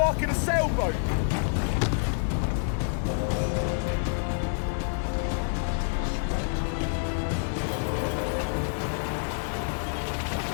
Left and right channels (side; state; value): right; silent; digital silence